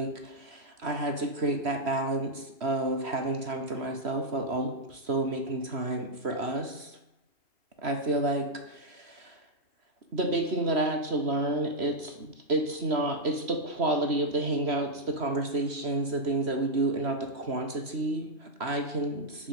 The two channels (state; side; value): late; left; 3.1 ms